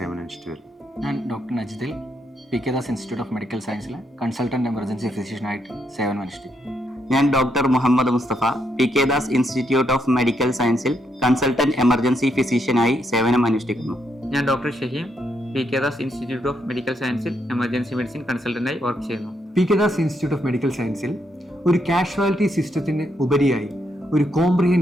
വരുന്നു. ഞാൻ ഡോക്ടർ നജിദിൽ P K Das institute of medical സയൻസിൽ കൺസൾട്ടൻറ്റ് എമർജൻസി ഫിസിഷ്യനായിട്ട് സേവനമനുഷ്ഠിക്കുന്നു. ഞാൻ doctor Muhammad Mustafa P K Das institute of medical സയൻസിൽ കൺസൾട്ടന്റ് എമർജൻസി ഫിസിഷ്യനായി സേവനം അനുഷ്ഠിക്കുന്നു. ഞാൻ doctor Shaheem P K Das institute of medical സയൻസിൽ എമർജൻസി മെഡിസിൻ കൺസൾട്ടന്റായി വർക്ക് ചെയ്യുന്നു. P K Das institute of medical സയൻസിൽ ഒരു കാഷ്വാലിറ്റി സിസ്റ്റത്തിന് ഉപരിയായി ഒരു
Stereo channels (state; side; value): normal; both; correlation 0.78